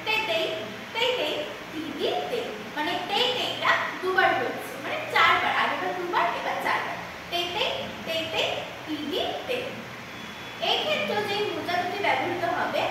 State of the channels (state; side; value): identical; both; correlation 1.00